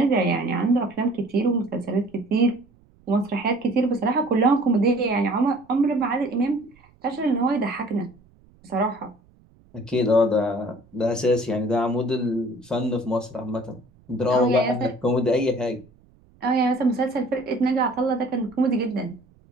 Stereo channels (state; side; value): noise; right; rumble, 30 dB below the sound